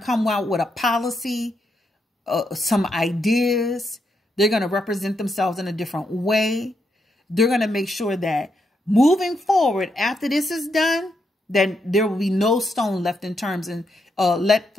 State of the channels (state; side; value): normal; both; correlation 0.81